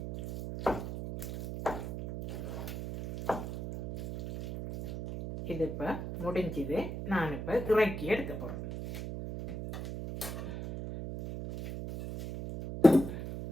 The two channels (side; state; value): right; noise; hum, 6 dB below the sound